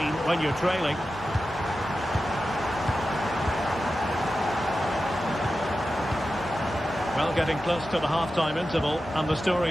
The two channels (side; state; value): left; noise; hum, 20 dB below the sound